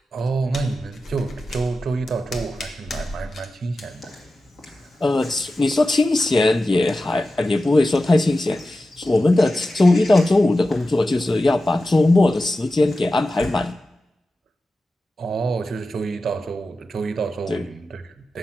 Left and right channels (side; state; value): both; normal; correlation 0.93